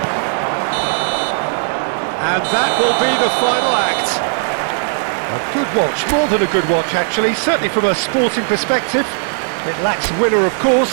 And that will be the final act. A good watch, more than a good watch actually, certainly from a sporting perspective. It lacks winner of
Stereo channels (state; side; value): silent; left; 61 dB below the other